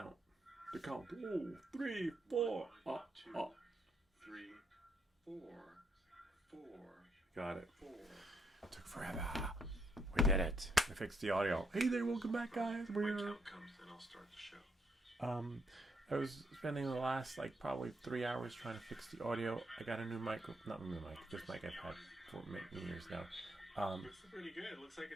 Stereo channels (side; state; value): both; normal; correlation 0.75